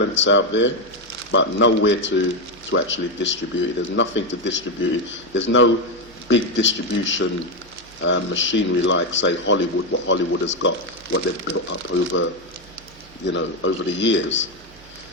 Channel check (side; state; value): both; normal; correlation 0.08